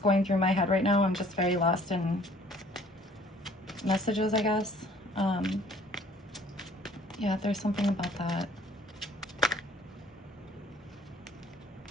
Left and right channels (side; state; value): both; normal; correlation 0.55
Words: through my head right now. I'm just very lost in messages, I guess. Yeah, there's something about that.